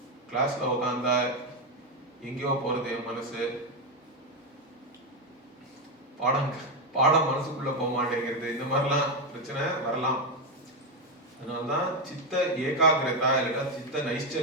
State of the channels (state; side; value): normal; both; correlation 0.08